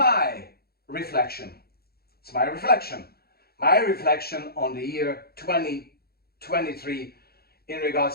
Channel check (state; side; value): late; right; 0.45 ms